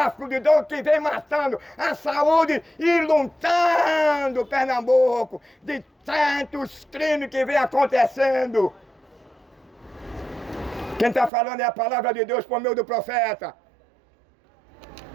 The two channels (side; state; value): left; drops out; at 11.3 s